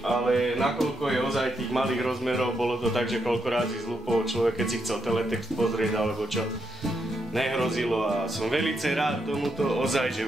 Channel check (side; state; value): both; normal; correlation 0.80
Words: nakoľko je ozaj tých malých rozmerov, bolo to tak, že koľko razy zlúpol človek, keď si chcel teletext pozrieť alebo čo, nehrozilo a som velice rád tomuto, ozaj, že